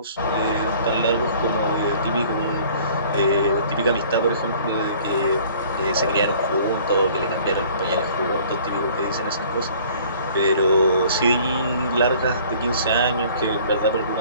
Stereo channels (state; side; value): inverted; both; correlation -0.52